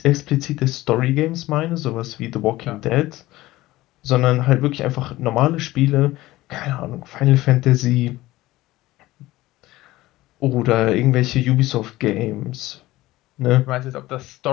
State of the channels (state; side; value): quieter; right; 17.6 dB